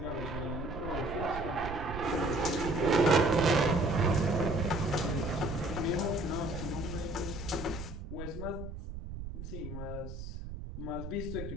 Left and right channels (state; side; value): noise; right; rumble, 9 dB below the sound